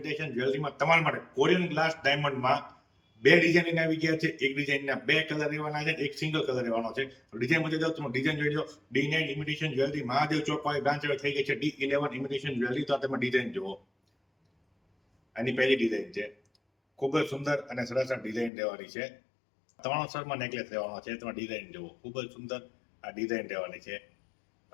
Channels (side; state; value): right; drops out; at 18.5 s